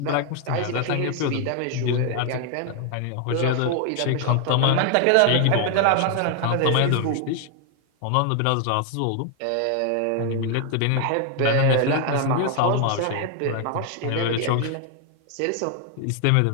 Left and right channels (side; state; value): both; different; correlation 0.00